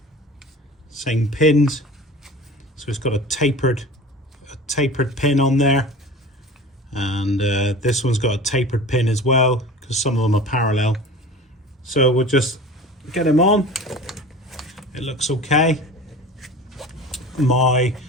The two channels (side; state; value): both; normal; correlation 0.37